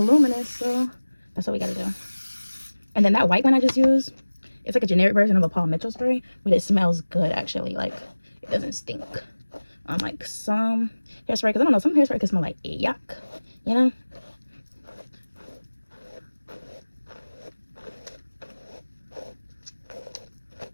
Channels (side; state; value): both; inverted; correlation -1.00